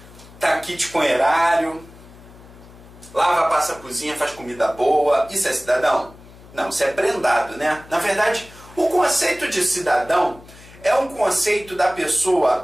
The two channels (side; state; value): left; noise; hum, 21 dB below the sound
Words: tá kit com erário, lava, passa a cozinha, faz comida boa. Isso é cidadão? Não, isso é prendado, né? Na verdade, o conceito de cidadão é um conceito da